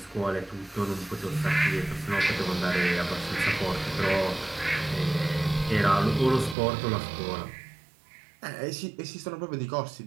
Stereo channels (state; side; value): drops out; left; at 6.6 s